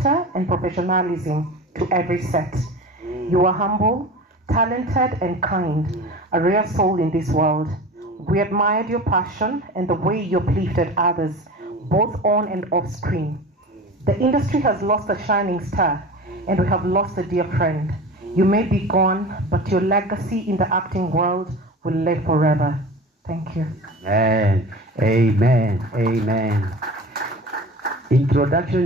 and professionalism to every set. You were humble, talented, and kind, a rare soul in this world. We admired your passion and the way you uplifted others, both on and off screen. The industry has lost a shining star, and we have lost a dear friend. You may be gone, but your legacy in the acting world will live forever. Thank you. Amen. Amen. Amen.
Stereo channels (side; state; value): both; normal; correlation 0.34